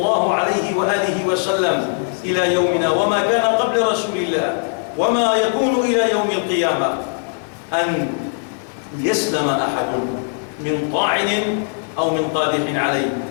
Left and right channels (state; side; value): silent; right; digital silence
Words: عليه وآله وسلم إلى يومنا، وما كان قبل رسول الله، وما يكون إلى يوم القيامة، أن يسلم أحد من طاعن أو من قادح عليه.